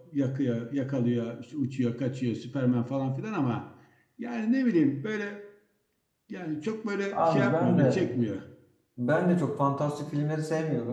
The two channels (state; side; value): identical; both; correlation 1.00